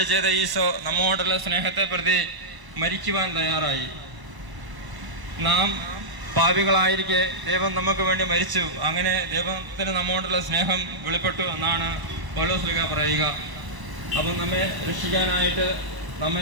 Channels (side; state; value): left; late; 1.0 ms